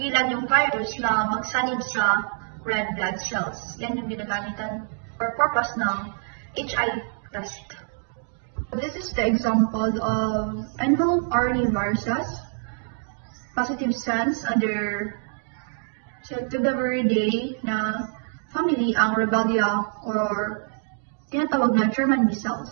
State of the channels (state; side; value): silent; left; digital silence